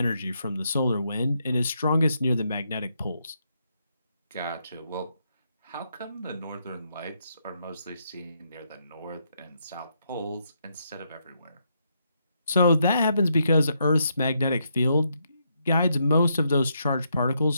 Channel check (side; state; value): both; inverted; correlation -0.78